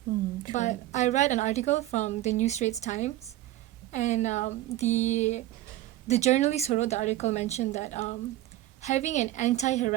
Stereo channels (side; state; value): left; quieter; 14.9 dB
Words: But I read an article from the New Straits Times, and the journalist who wrote the article mentioned that having an